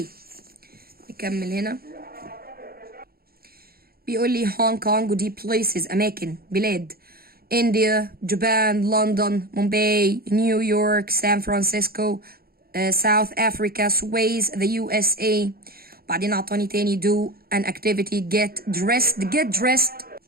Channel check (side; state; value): left; late; 0.44 ms